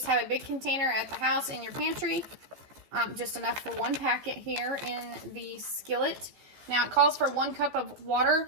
have a big container at the house in your pantry, just enough for 1 packet here in the skillet. Now it calls for 1 cup of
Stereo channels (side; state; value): left; late; 14 ms